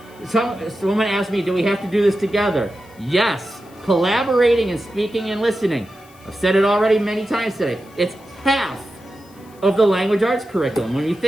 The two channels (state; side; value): noise; left; hiss, 28 dB below the sound